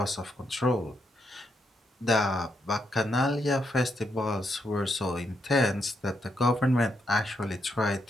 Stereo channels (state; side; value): normal; both; correlation 0.79